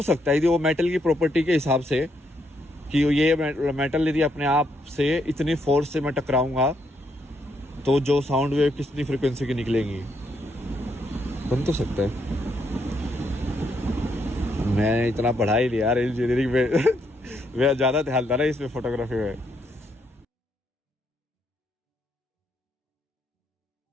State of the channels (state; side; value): normal; both; correlation 0.76